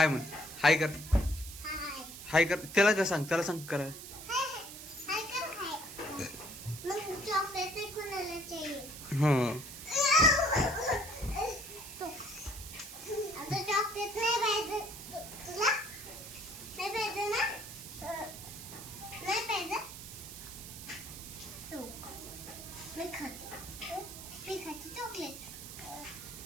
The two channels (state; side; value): noise; right; hiss, 12 dB below the sound